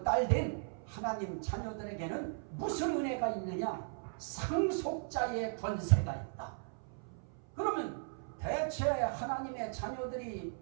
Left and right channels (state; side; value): silent; left; 53 dB below the other